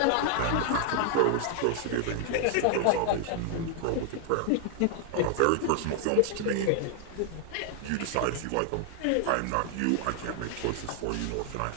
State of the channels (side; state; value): both; different; correlation 0.00